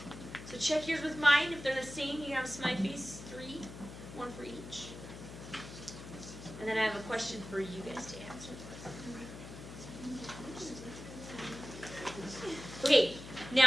So check yours with mine. If they're the same, you can have a smiley face. 3, 1 for each. And then I have a question for you guys to answer. Okay,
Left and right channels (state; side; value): noise; left; hum, 12 dB below the sound